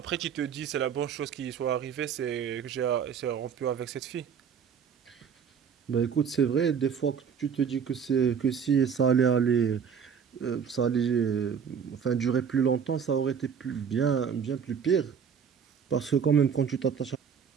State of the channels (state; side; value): quieter; left; 7.1 dB